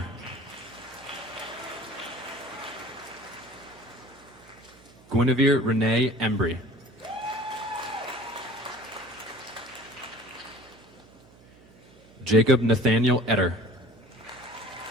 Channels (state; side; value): noise; right; hum, 25 dB below the sound